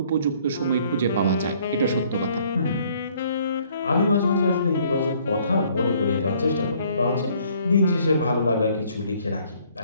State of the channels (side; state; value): both; inverted; correlation -0.62